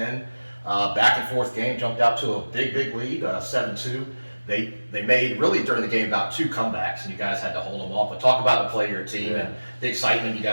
Back and forth game, jumped out to a big lead, 7-2. They made, really during the game, about 2 comebacks, and you guys had to hold them off. But talk about the play of your team and the excitement you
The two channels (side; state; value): both; inverted; correlation -1.00